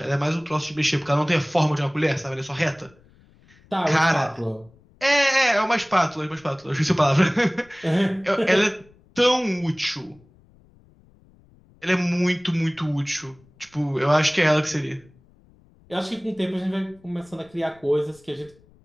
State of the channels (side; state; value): left; noise; rumble, 29 dB below the sound